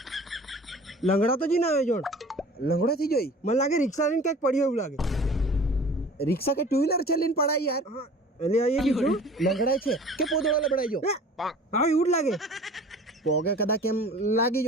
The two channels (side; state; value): both; normal; correlation 0.44